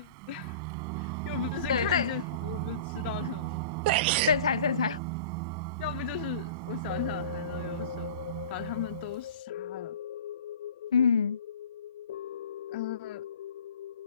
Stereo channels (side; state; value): both; inverted; correlation -0.38